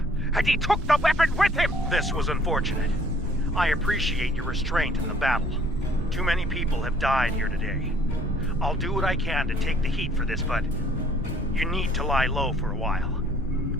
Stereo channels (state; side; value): normal; both; correlation 0.59